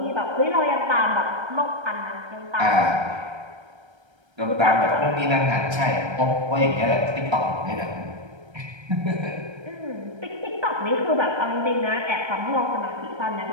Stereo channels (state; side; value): late; left; 1.3 ms